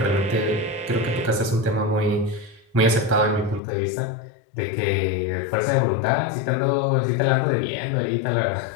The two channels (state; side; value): drops out; right; at 3.6 s